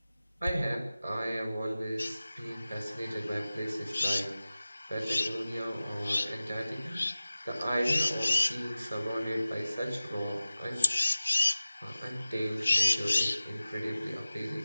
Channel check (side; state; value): both; inverted; correlation -0.97